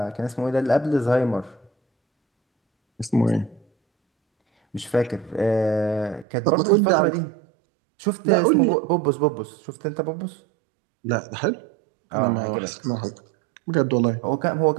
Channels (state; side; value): drops out; left; at 6.2 s